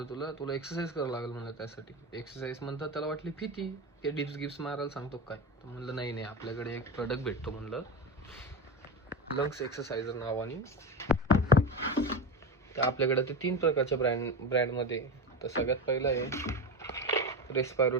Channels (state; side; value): normal; both; correlation 0.20